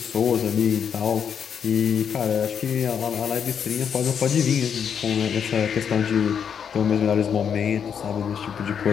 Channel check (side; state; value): right; quieter; 7.6 dB